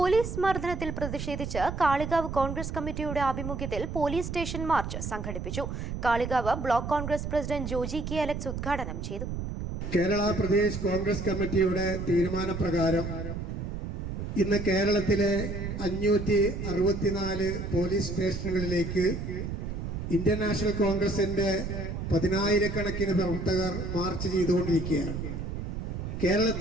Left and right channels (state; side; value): noise; right; rumble, 5 dB below the sound